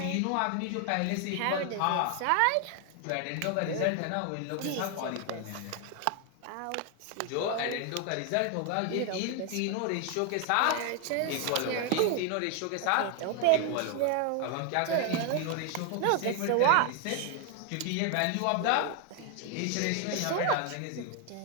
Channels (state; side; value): different; both; correlation 0.01